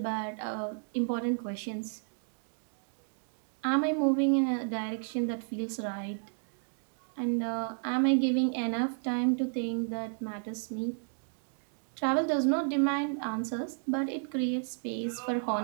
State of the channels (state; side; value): silent; left; 56 dB below the other